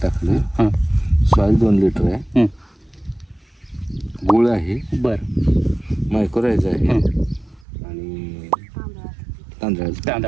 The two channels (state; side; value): drops out; left; at 7.7 s